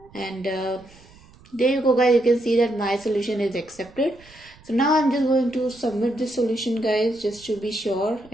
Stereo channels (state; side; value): noise; right; rumble, 25 dB below the sound